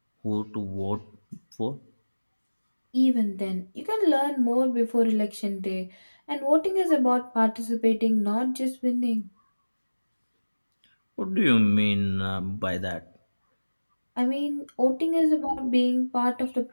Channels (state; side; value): inverted; both; correlation -1.00